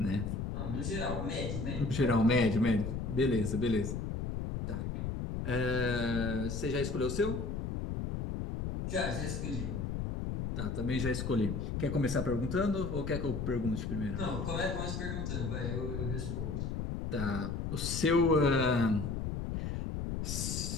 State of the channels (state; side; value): noise; left; rumble, 3 dB below the sound